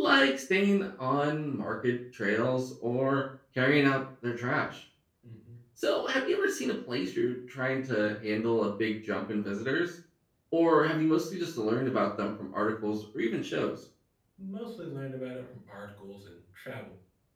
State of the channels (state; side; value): identical; both; correlation 1.00